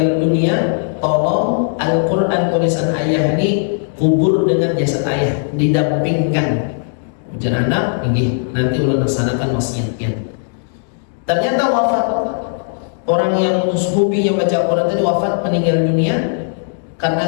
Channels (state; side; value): silent; right; digital silence